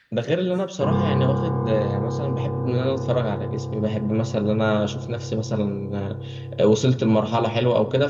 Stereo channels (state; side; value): identical; both; correlation 1.00